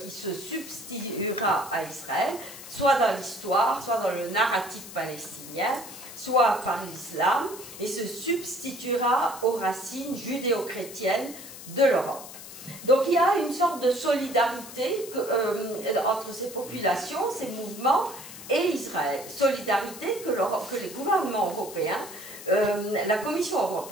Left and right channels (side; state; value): left; noise; hiss, 14 dB below the sound